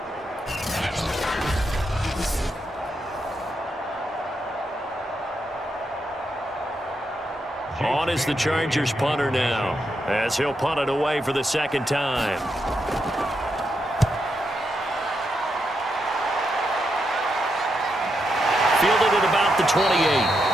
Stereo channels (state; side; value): normal; both; correlation 0.83